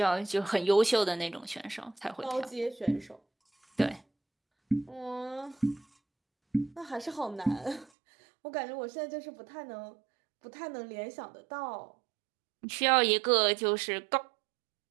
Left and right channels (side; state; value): left; drops out; at 7.9 s